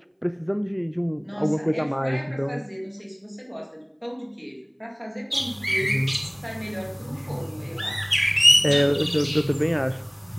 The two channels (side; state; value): both; identical; correlation 1.00